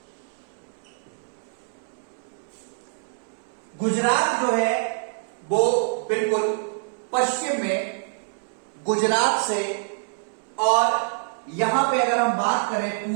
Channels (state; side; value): silent; left; 61 dB below the other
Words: गुजरात जो है वो बिल्कुल पश्चिम में गुजरात से, और यहां पे अगर हम बात करें